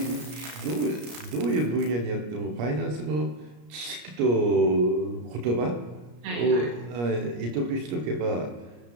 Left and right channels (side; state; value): left; late; 34 ms